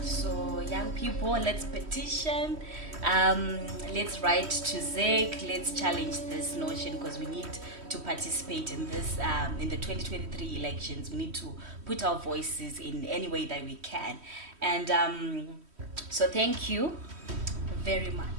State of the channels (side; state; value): left; late; 3.1 ms